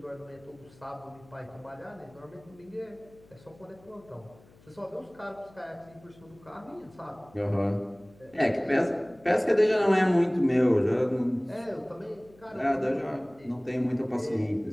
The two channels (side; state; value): left; noise; hum, 26 dB below the sound